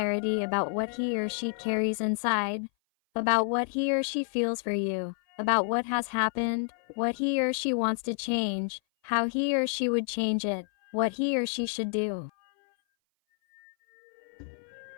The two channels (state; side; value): silent; right; 57 dB below the other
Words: about what he or she carries inside, about what he or she feels for you, about what has happened, what he or she wants to change, how he or she would change it, what he or she should do.